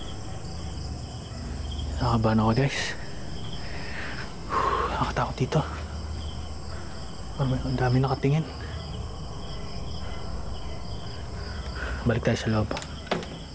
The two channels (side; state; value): both; identical; correlation 1.00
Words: Nakakatakot dito. Ang dami nakatingin. Balik tayo sa loob.